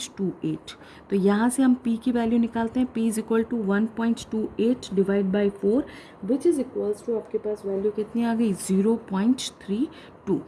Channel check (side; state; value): both; identical; correlation 1.00